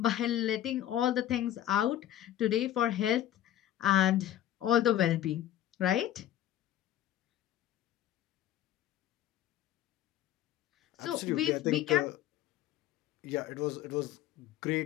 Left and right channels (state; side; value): quieter; right; 12.1 dB